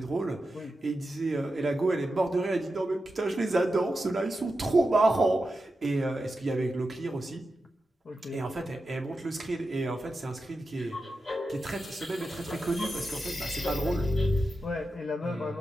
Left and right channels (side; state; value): both; normal; correlation 0.90